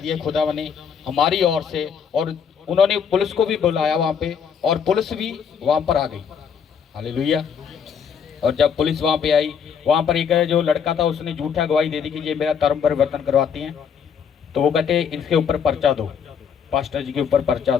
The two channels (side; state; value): right; quieter; 7.1 dB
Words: खुदा ने हमारी ओर से, और उन्होंने पुलिस को भी बुलाया वहाँ पे, और पुलिस भी वहाँ पर आ गई। हालेलुया। और जब पुलिस वहाँ पे आई, वहाँ पर एक जो लड़का था उसने झूठा गवाही दे दी कि ये मेरा धर्म परिवर्तन करवाती हैं, तो वो कहते इनके ऊपर पर्चा दो, पास्टर जी के ऊपर पर्चा